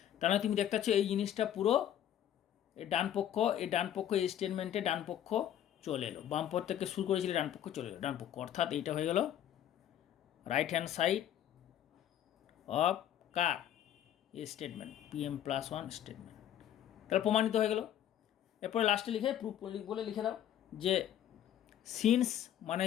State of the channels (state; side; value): quieter; right; 10.9 dB